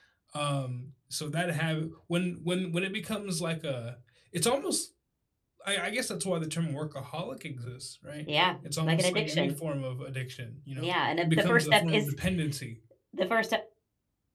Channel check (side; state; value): both; identical; correlation 1.00